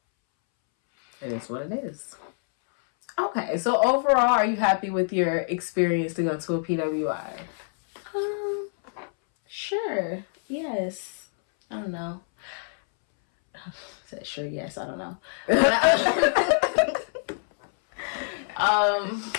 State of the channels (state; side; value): silent; right; 61 dB below the other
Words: it is what it is. Okay, so overall, are you happy with your experience to go to a PWI? Sure. Yes. I don't know. Said sure, yes, I don't know.